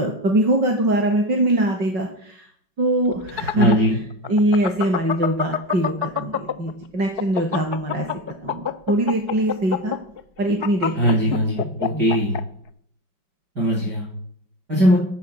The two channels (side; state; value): left; late; 5.3 ms